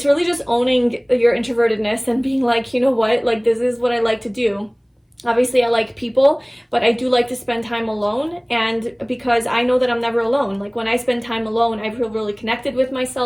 really just owning your introvertedness and being like, you know what, like, this is what I like to do. Obviously, I like people, but I do like to spend time alone, and because I know that I'm never alone. Like, when I spend time alone, I feel really connected with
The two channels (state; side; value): identical; both; correlation 1.00